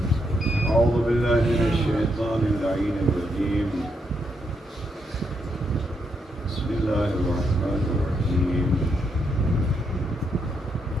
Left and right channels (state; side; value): normal; both; correlation 0.79